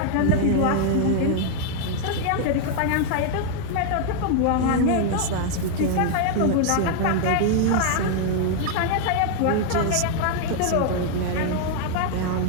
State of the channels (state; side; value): different; both; correlation 0.00